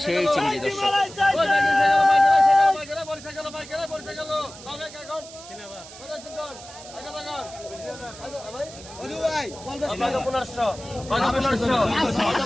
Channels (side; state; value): right; noise; hiss, 17 dB below the sound